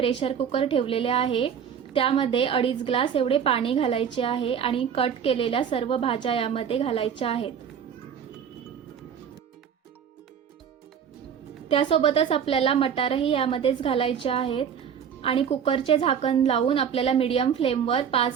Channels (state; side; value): quieter; left; 7.9 dB